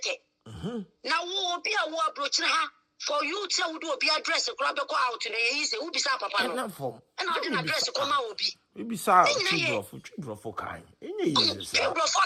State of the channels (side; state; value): both; identical; correlation 1.00